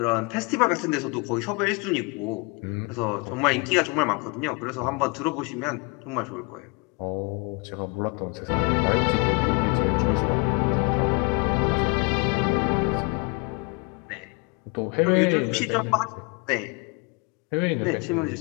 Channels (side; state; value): right; quieter; 30.8 dB